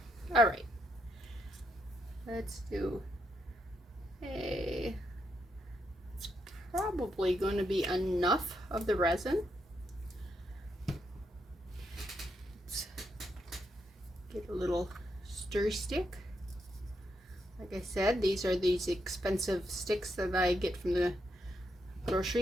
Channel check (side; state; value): both; normal; correlation 0.80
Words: All right. Let's do a, it's probably going to be enough of the resin. Let's get a little stir stick. Like I said, these are these expensive sticks that I get from the